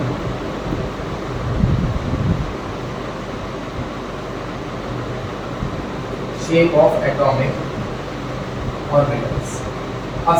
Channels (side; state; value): both; identical; correlation 1.00